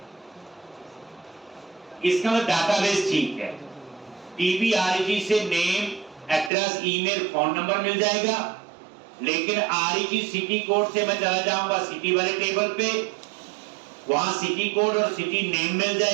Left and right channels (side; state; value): left; drops out; at 6.5 s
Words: इसका मतलब डाटाबेस ठीक है। TBREG से name, address, email, phone number मिल जाएगा। लेकिन REG सिटी कोड से मैं चला जाऊंगा सिटी वाले टेबल पे, वहां सिटी कोड और सिटी नेम मिल